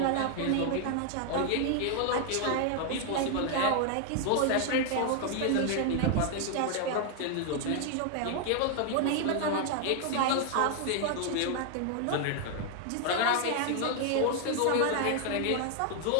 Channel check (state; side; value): different; both; correlation 0.00